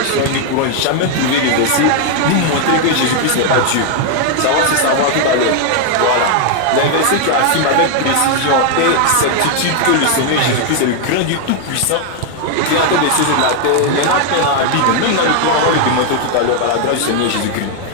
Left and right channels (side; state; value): both; different; correlation 0.00